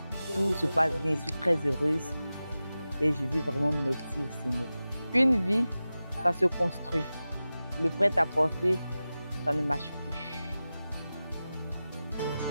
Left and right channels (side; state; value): both; inverted; correlation -0.95